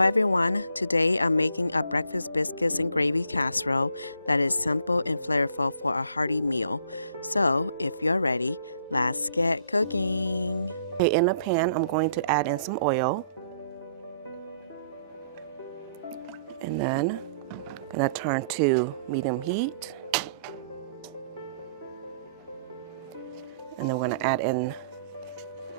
everyone, today I'm making a breakfast biscuits and gravy casserole that is simple and flavorful for a hearty meal. So if you're ready, let's get cooking. Okay, in a pan I'm going to add in some oil. And then I'm going to turn to medium heat. And then we're going to add in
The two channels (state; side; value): inverted; both; correlation -0.62